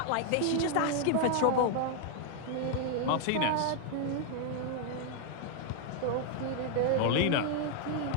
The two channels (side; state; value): both; different; correlation 0.00